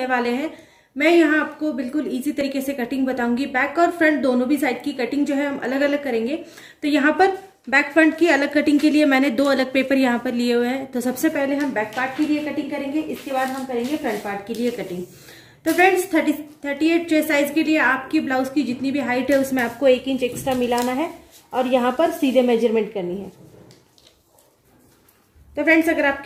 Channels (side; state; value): both; identical; correlation 1.00